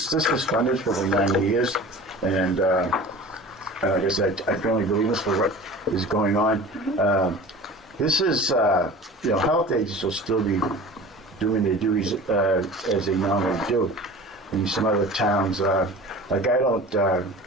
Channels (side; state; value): both; normal; correlation 0.39